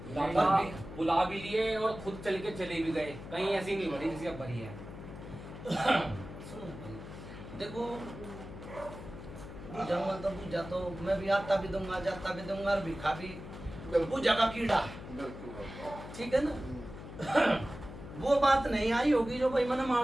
दादा बुला भी लिए और खुद चल के चले भी गए, कहीं ऐसी नहीं भरी जैसी अब भरी है। सुनो भाई, देखो पूजा तो पूजा तो मैं भी आता भी दूंगा, जाता भी दूंगा और भिखा भी। पूजा का कीड़ा है, बिल्कुल बाबा। ठीक है ना। वो बात नहीं आई होगी जो भाई मैंने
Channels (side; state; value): left; noise; hum, 12 dB below the sound